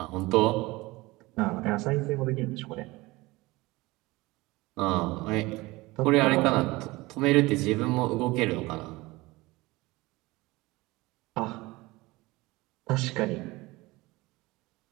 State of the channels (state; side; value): quieter; left; 21.3 dB